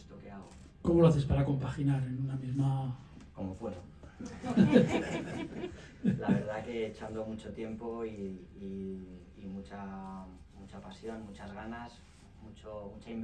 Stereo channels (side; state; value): both; identical; correlation 1.00